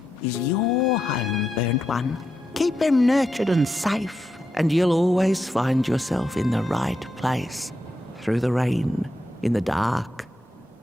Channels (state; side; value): normal; both; correlation 0.85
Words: is your home, burnt one. Keep him nurtured and safe, and you'll always find yourself in the right place. Through the rain, in the dark,